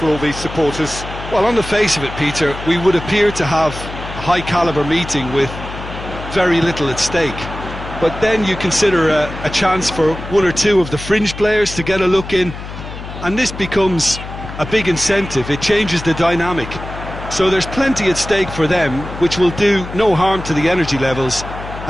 all these supporters. Well, on the face of it, Peter, we would appear to have a high-caliber meeting with very little at stake. But then you consider a chance for one or two of the fringe players to get a look in, and this becomes a big incentive. It changes the dynamic. So there's plenty at stake for them, which will do no harm to the energy levels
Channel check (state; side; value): noise; left; hum, 10 dB below the sound